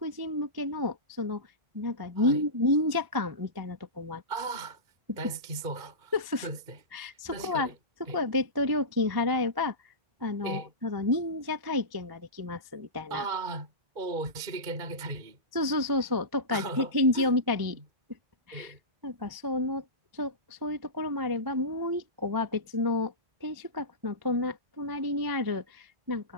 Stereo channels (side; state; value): left; late; 1.1 ms